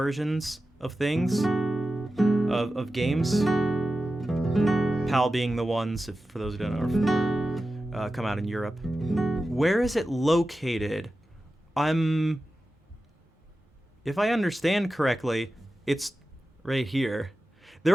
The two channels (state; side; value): normal; both; correlation 0.93